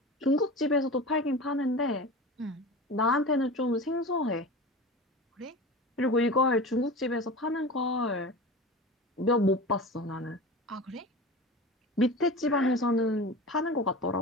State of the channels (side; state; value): both; normal; correlation 0.32